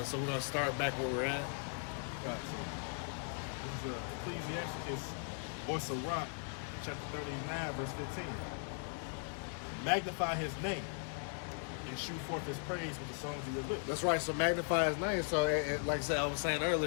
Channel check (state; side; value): silent; right; 52 dB below the other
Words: so we're going to start back where we're at. Got it. So, this is Ecclesiasticus or Sirach, chapter 39, verse 15. Magnify his name and shoot forth his praise with the songs of your lips. That's right, so magnify his name. So, like I said, I was saying